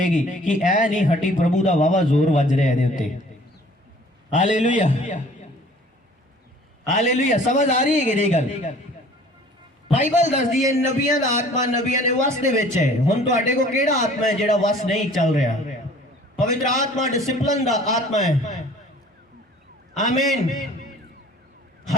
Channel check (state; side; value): normal; both; correlation 0.51